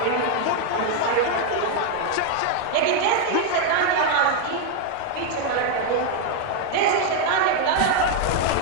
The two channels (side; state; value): both; different; correlation 0.01